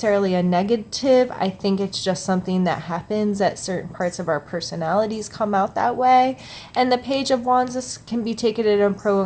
a negative. I think it's just something that happens, that certain parts of our personalities come out that way. And the Page of Wands, this can be taken in a pro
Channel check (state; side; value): identical; both; correlation 1.00